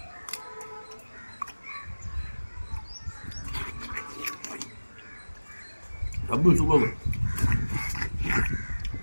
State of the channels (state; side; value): inverted; both; correlation -1.00